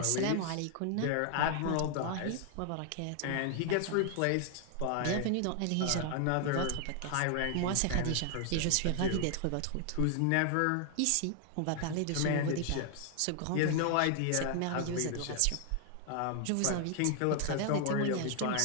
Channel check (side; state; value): both; different; correlation 0.00